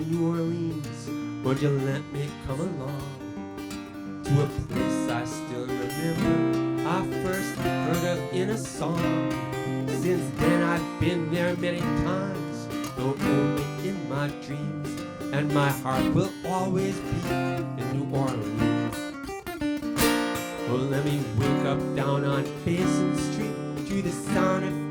New Orleans, would you let me come along to a place I still remember I first heard of in a song? Since then I've been there many times, though only in my dreams, and my heart will always be in New Orleans. Oh, let me wake up down on Basin Street to the sound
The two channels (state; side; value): identical; both; correlation 1.00